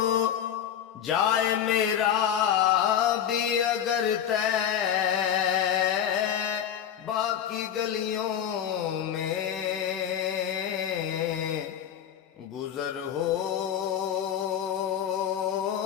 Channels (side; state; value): right; quieter; 9.4 dB